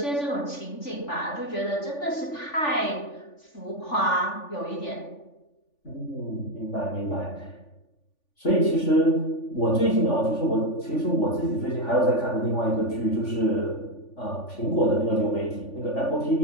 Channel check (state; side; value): late; right; 3.5 ms